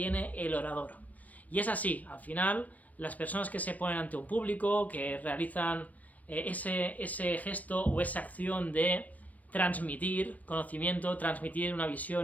el orador. Y es así, al final, las personas que se ponen ante un público, que realizan ese gesto o esa acción de transmitir conocimiento, transmitir una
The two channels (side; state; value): right; late; 0.073 ms